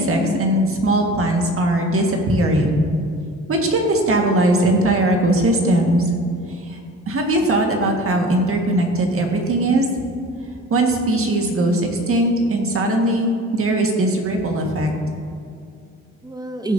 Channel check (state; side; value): normal; both; correlation 0.41